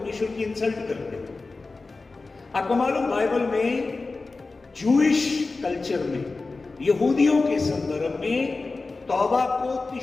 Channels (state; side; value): quieter; right; 3.7 dB